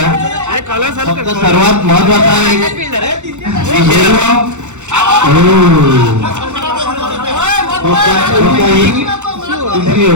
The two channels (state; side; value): late; left; 0.84 ms